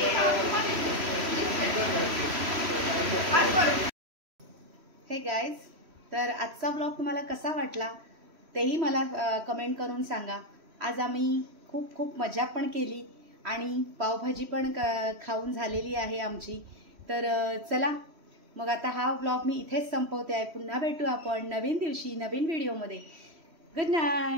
हे गाईज, तर आजचा व्लॉग तुम्हाला कसा वाटला तेही मला कमेंट करून सांगा. आज आम्ही खूप खूप मजा पण केली आणि पावभाजी पण खाऊन झालेली आहे आमची. तर चला मग आता हा व्लॉग मी इथेच संपवते आहे. पुन्हा भेटू आपण नवीन दिवशी नवीन व्हिडिओमध्ये. गुड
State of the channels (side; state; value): left; late; 3.1 ms